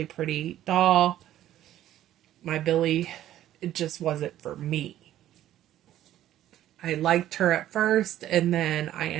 pretty doll. My Billy it just wasn't for me. I liked her at first, and then I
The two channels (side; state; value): left; quieter; 12.7 dB